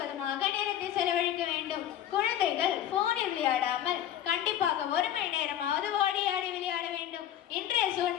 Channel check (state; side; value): quieter; right; 11.2 dB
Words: நேரத்தை செலவழிக்க வேண்டும். குழந்தைகள் போனில் விளையாடாமல் கண்டிப்பாக 1 மணி நேரமாவது ஓடி ஆடி விளையாட வேண்டும். இன்றைய